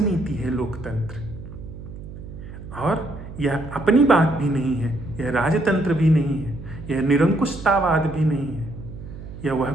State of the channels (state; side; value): noise; right; hum, 13 dB below the sound